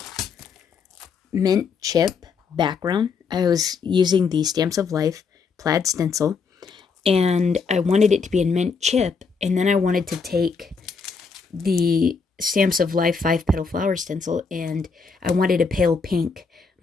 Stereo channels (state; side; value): quieter; right; 5.2 dB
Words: mint chip background. I was using the Stamps of Life plaid stencil, and I wanted it to be in mint chip, and then I wanted to take the Stamps of Life 5 petal flower stencil, and I wanted a pale pink